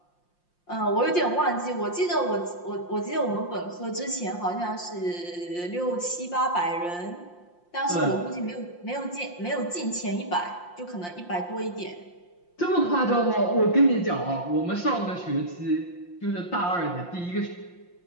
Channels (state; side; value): late; right; 5.7 ms